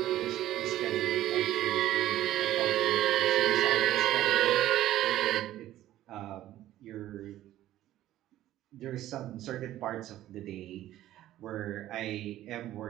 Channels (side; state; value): left; quieter; 13.8 dB